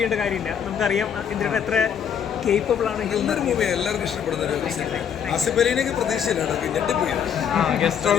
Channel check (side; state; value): right; quieter; 8.1 dB